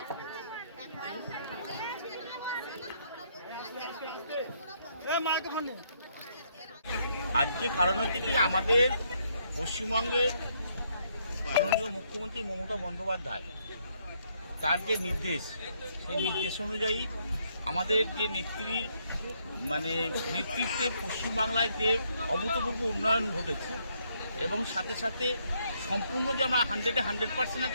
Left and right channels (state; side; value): inverted; both; correlation -0.72